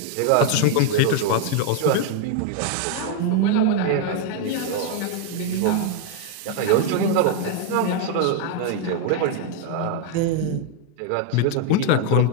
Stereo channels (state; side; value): different; both; correlation 0.00